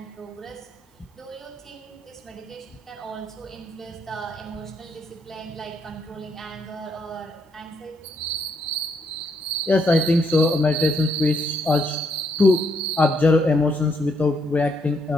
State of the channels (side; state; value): both; normal; correlation 0.74